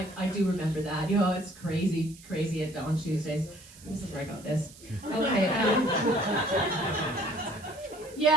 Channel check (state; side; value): noise; right; hiss, 21 dB below the sound